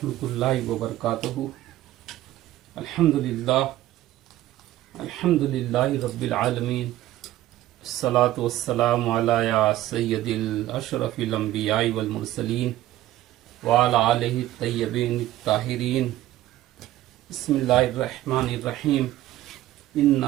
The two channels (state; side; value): quieter; left; 14.7 dB